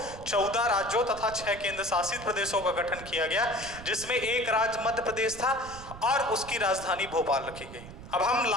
14 राज्यों तथा 6 केंद्र शासित प्रदेशों का गठन किया गया, जिसमें एक राज्य मध्य प्रदेश था और उसकी राजधानी भोपाल रखी गई। अब हम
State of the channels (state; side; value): noise; right; rumble, 14 dB below the sound